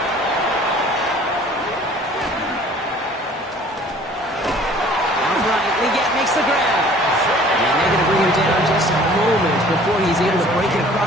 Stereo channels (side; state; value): both; normal; correlation 0.51